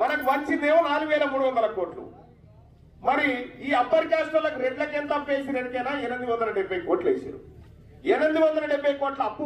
వంచిందేమో 4,300 కోట్లు. మరి ఈ అప్పర్ క్యాస్ట్ వాళ్ళకి రెడ్లకి ఎంత అప్పు వేసి ఎరికేనా? 870 కోట్లు వేసారు. 870 కోట్ల అప్పు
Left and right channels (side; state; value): both; identical; correlation 1.00